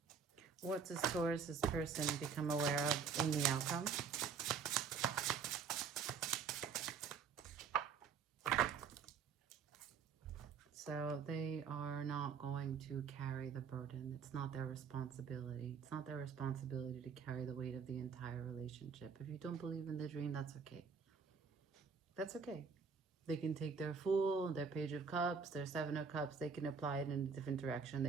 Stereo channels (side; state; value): left; quieter; 6.0 dB